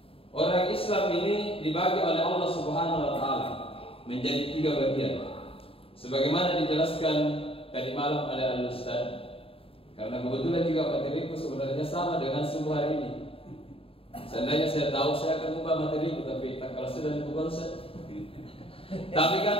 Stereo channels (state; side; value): late; right; 0.27 ms